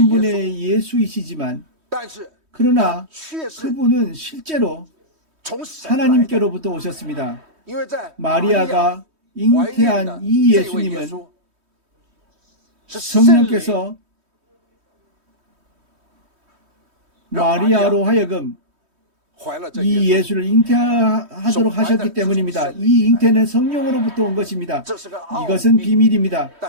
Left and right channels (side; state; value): left; late; 3.2 ms